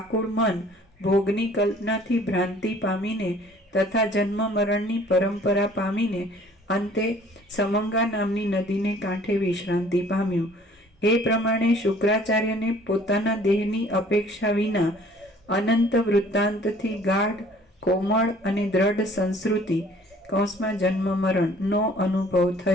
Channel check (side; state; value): both; normal; correlation 0.54